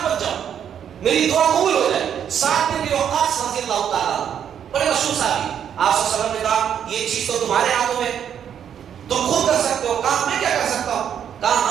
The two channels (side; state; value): left; quieter; 8.8 dB